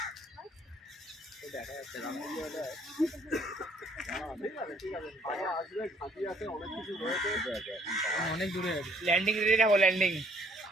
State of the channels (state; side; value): normal; both; correlation 0.63